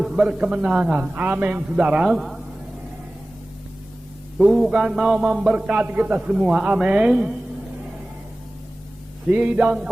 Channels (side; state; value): both; normal; correlation 0.97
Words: berkemenangan. Amin, saudara. Tuhan mau memberkati kita semua. Amin. Sidang